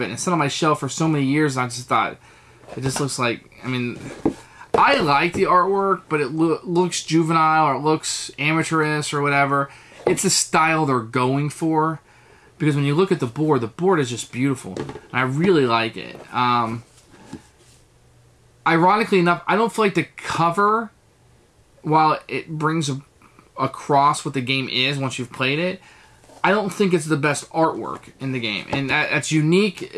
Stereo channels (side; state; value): both; identical; correlation 1.00